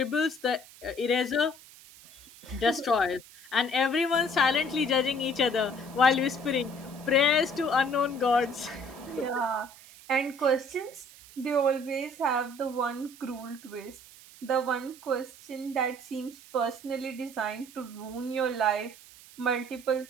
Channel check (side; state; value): right; noise; hiss, 21 dB below the sound